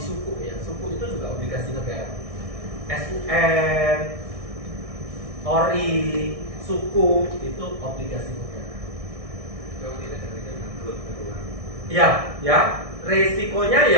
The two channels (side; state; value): left; late; 1.6 ms